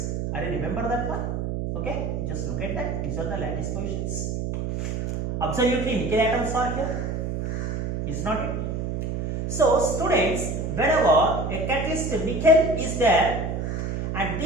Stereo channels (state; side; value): noise; right; hum, 2 dB below the sound